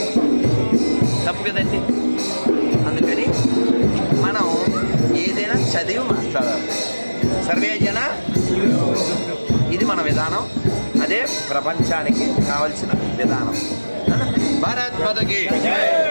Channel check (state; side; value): inverted; both; correlation -1.00